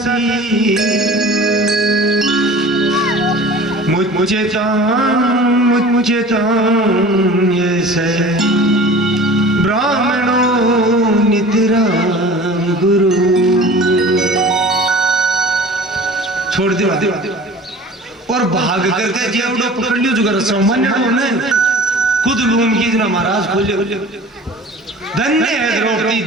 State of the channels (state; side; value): normal; both; correlation 0.42